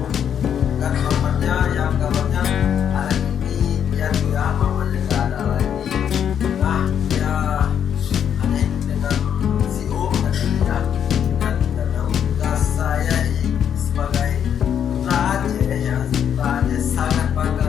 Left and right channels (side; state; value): right; quieter; 8.7 dB